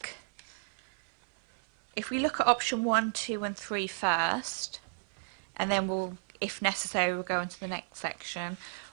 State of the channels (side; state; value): left; silent; 56 dB below the other